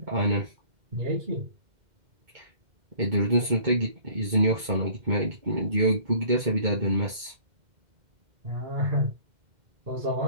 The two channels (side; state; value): left; late; 2.1 ms